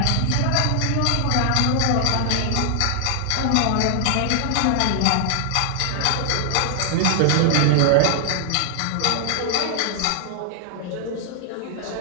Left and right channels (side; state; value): both; different; correlation 0.00